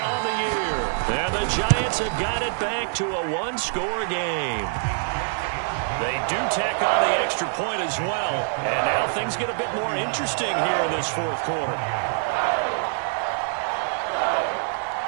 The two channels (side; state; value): left; silent; digital silence